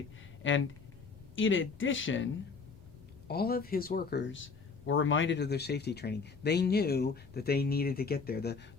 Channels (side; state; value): right; quieter; 4.9 dB